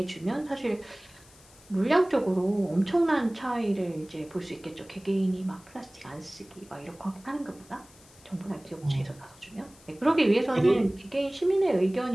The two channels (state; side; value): noise; left; hiss, 25 dB below the sound